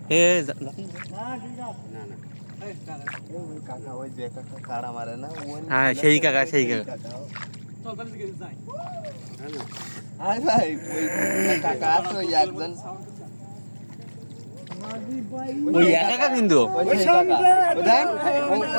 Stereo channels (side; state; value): both; inverted; correlation -1.00